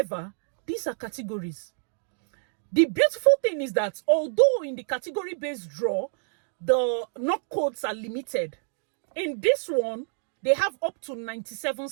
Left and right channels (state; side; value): silent; left; 60 dB below the other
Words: these are categories. The beautiful thing is that although in the category-based draw, the knock codes are limited, in this one, they have up to 97